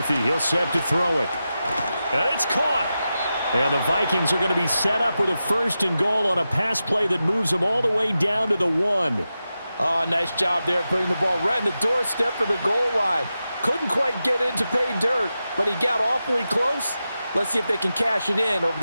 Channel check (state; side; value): inverted; both; correlation -0.91